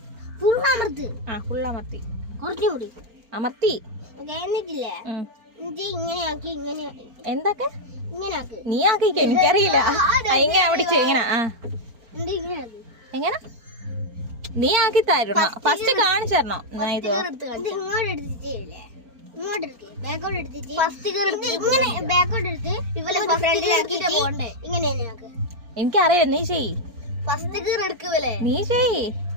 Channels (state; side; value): late; left; 4.4 ms